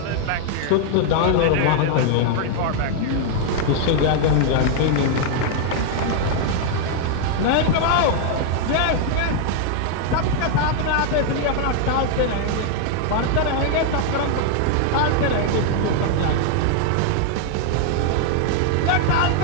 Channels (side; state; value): both; different; correlation 0.00